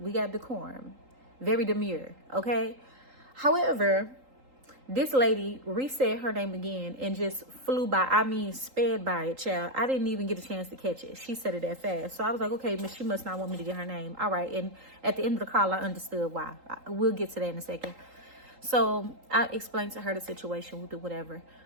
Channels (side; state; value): left; late; 3.8 ms